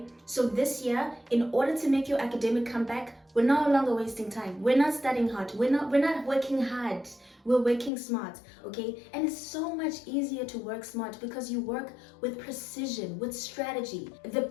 So this year, in order to make your academic comeback, we're no longer wasting time. We're not studying hard. We're not working hard. We're working smart, okay? And it's so much easier to work smart because you work with precision, with strategy.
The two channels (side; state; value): right; drops out; at 7.9 s